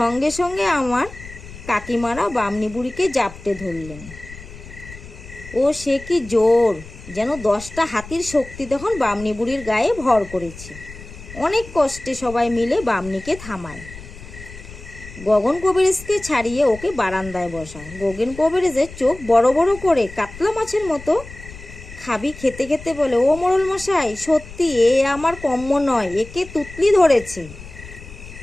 সঙ্গে আমার কাকিমারা বামনি বুড়িকে জাপটে ধরলেন। ও সে কি জোর! যেন 10টা হাতির শক্তি তখন বামনি বুড়ির গায়ে ভর করেছে। অনেক কষ্টে সবাই মিলে বামনিকে থামায়। গগন কবিরাজকে ছাড়িয়ে ওকে বারান্দায় বসায়। গগন কবিরাজের চোখ বড় বড় করে কাতলা মাছের মতো খাবি খেতে খেতে বলে, ও মোড়ল মশাই, সত্যি এ আমার কম্য নয়, একে তুতলি ধরেছে।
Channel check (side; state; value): left; noise; rumble, 16 dB below the sound